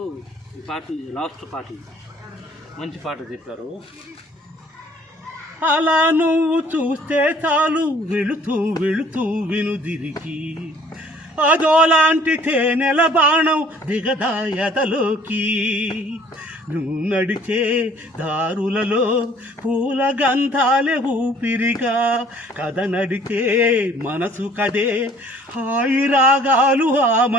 ఈ పాట లాస్ట్ పాట మంచి పాట చెప్పారు. అలా నువ్వు చూస్తే చాలు వెళుతూ వెళుతూ వినుదిరికి అదోలాంటి తేనెల బాణం దిగదాయతలోకి నువ్వు నడిచే దారులలో పూల గంధాలే ఊపిరిగా కథ నడిచే మనసు కదే హాయి రాగాలు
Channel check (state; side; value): normal; both; correlation 0.56